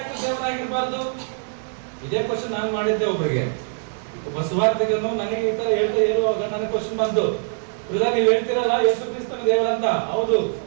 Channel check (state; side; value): silent; left; digital silence